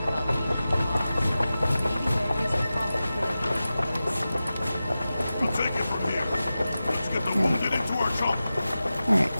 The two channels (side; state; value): both; inverted; correlation -0.94